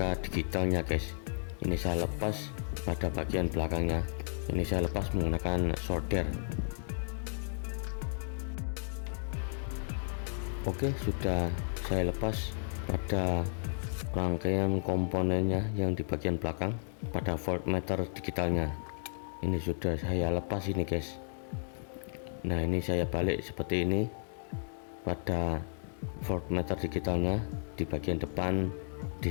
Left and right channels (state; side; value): silent; right; digital silence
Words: digitalnya, guys. Ini saya lepas pada bagian belakangnya. Ini saya lepas menggunakan solder. Oke, sudah saya lepas pada rangkaian komponennya yang di bagian belakang pada voltmeter digitalnya. Ini sudah saya lepas ini, guys. Nah, ini saya balik seperti ini pada voltmeter digitalnya di bagian depan